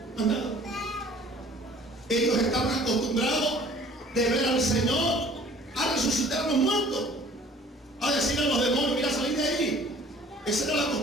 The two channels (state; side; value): normal; both; correlation 0.52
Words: Ellos estaban acostumbrados de ver al Señor a resucitar a los muertos, a decir a los demonios: mira, salid de ahí. Esa era la